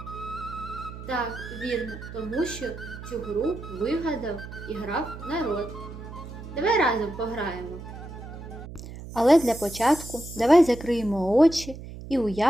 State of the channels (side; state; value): right; noise; hum, 12 dB below the sound